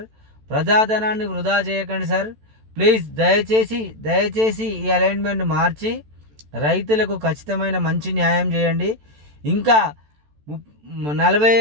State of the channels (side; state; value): left; late; 14 ms